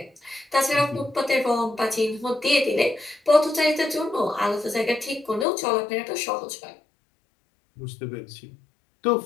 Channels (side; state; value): right; drops out; at 5.5 s